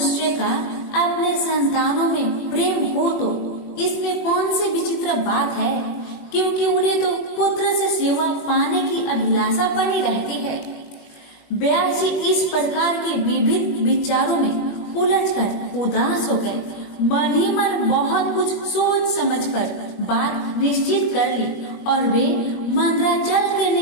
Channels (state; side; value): late; right; 20 ms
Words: का अपने संतानों में प्रेम हो तो इसमें कौन सी विचित्र बात है, क्योंकि उन्हें तो पुत्र से सेवा पाने की अभिलाषा बनी रहती है। व्यास जी इस प्रकार के विविध विचारों में उलझकर उदास हो गए। मन ही मन बहुत कुछ सोच समझकर बात निश्चित कर ली और वे मंदराचल के